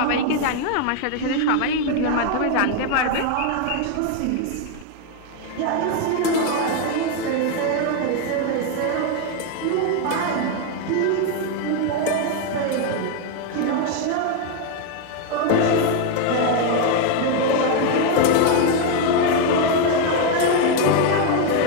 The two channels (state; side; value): different; both; correlation 0.01